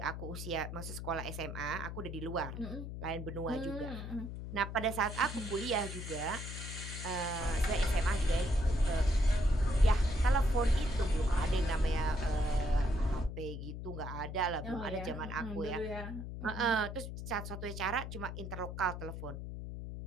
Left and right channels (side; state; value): left; noise; hum, 7 dB below the sound